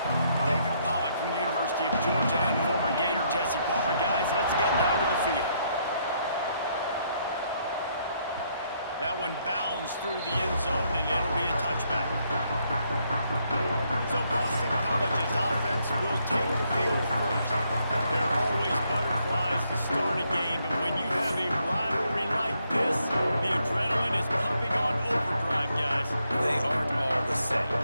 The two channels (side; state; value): both; inverted; correlation -0.74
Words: David Pollock from the University of Georgia and former Gator Jesse Palmer. Guys, let's get down to the field. That one bounds through the end zone, and it'll be a touchback. So Boston College's offense will take the field first. There are always butterflies to start a game, and when you have a rivalry like this, the adrenaline is pumping on overdrive, guys. They aren't all the same.